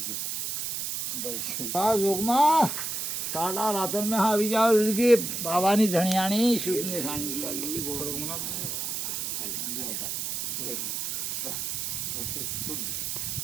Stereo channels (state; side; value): noise; right; hiss, 3 dB below the sound